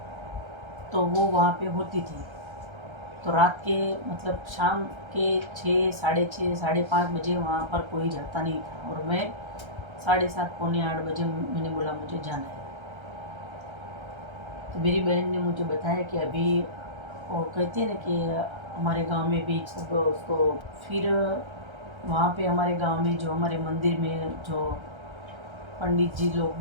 तो वो वहाँ पे होती थी। तो रात के मतलब शाम के 6, साढ़े 6, साढ़े 5 बजे वहाँ पर कोई जाता नहीं था, और मैं 7:30, पौने 8 बजे मैंने बोला मुझे जाना है। तो मेरी बहन ने मुझे बताया कि अभी वो कहते हैं ना कि हमारे गांव में भी सब उसको, फिर वहाँ पे हमारे गांव में जो हमारे मंदिर में जो पंडित जी लोग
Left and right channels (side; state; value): left; late; 1.3 ms